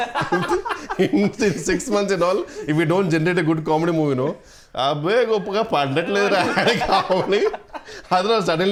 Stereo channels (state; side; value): identical; both; correlation 1.00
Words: In 6 months and all, if we don't generate a good comedy movie, అబ్బే గొప్పగా పడట్లేదు కావాలి. Otherwise